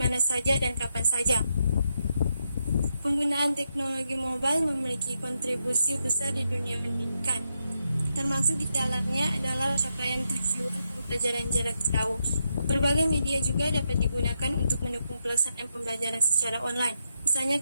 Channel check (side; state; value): both; inverted; correlation -0.82